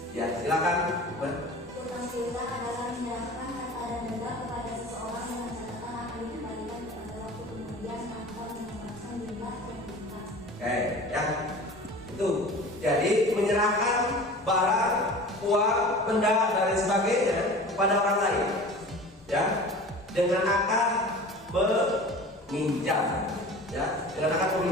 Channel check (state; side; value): normal; both; correlation 0.39